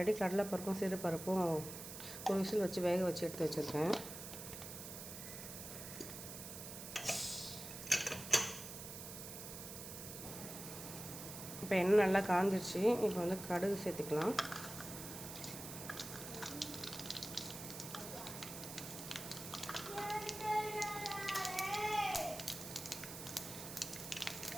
கடலைப்பருப்பும் சிறுபருப்பும் ஒரு விசில் வச்சு வேக வச்சு எடுத்து வச்சுருக்கேன். இப்போ எண்ணெய் நல்லா காஞ்சிடுச்சு. இப்போ வந்து கடுகு சேர்த்துக்கலாம்.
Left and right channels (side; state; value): right; noise; hiss, 9 dB below the sound